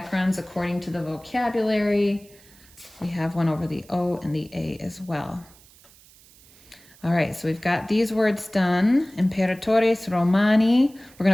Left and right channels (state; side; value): noise; right; hiss, 26 dB below the sound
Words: according to the vocabulary. We have one over the O and the A as well. All right, so we've got these words done. Imperatores Romani. We're